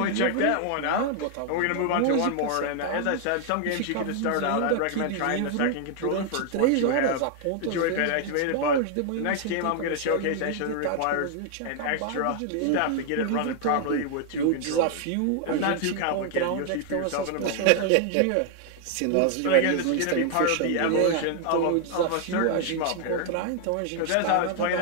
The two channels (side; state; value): both; different; correlation 0.00